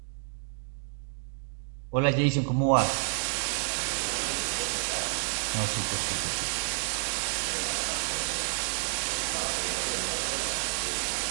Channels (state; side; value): silent; left; 58 dB below the other